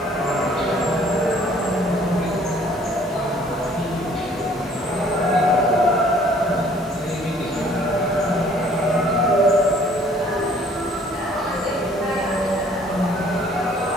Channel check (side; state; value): both; normal; correlation 0.57